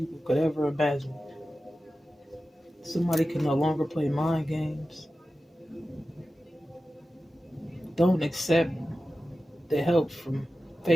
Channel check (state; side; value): normal; both; correlation 0.94